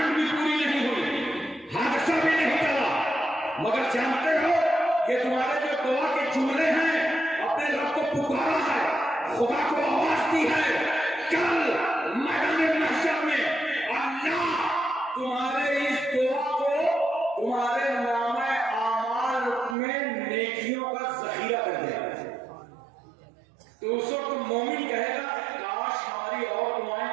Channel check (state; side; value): drops out; left; at 19.8 s